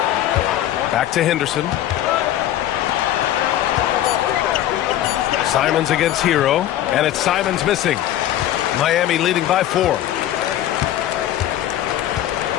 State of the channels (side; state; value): right; quieter; 12.5 dB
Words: Back to Henderson. Simons against Hero, and it's Simons missing. Miami leading by 4.